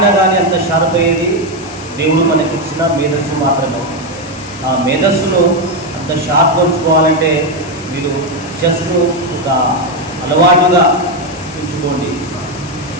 కానీ అంత షార్ప్ అయ్యేది దేవుడు మనకి ఇచ్చిన మేధస్సు మాత్రమే. ఆ మేధస్సును అంత షార్ప్ ఉంచుకోవాలంటే మీరు చెస్ను ఒక అలవాటుగా ఉంచుకోండి.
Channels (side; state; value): left; noise; hiss, 18 dB below the sound